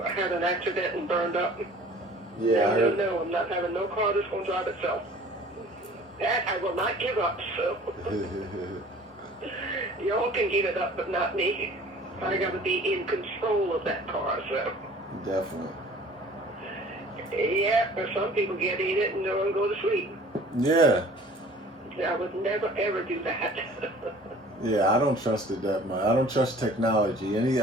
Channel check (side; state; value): both; normal; correlation 0.49